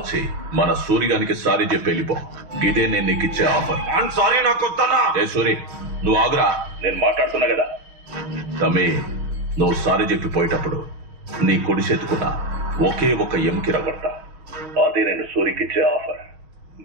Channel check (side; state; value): left; late; 6.3 ms